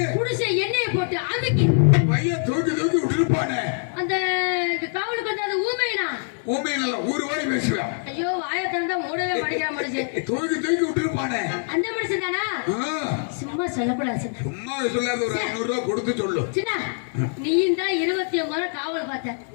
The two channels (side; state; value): right; silent; 63 dB below the other